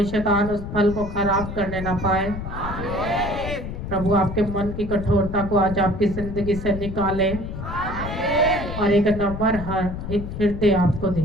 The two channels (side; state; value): left; noise; rumble, 7 dB below the sound